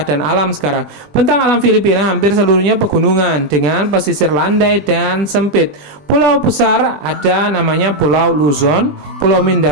alam sekarang. Bentang alam Filipina hampir seluruhnya pegunungan dengan pesisir landai dan sempit. Pulau besar ada namanya Pulau Luzon, Pulau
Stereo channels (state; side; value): late; left; 20 ms